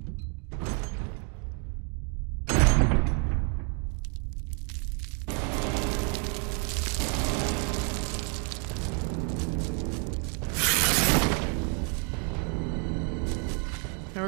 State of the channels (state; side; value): quieter; left; 38.5 dB